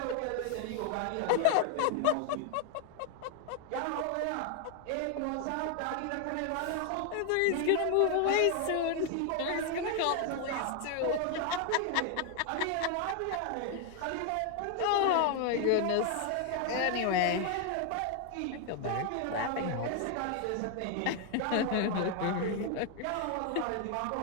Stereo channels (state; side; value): different; both; correlation 0.00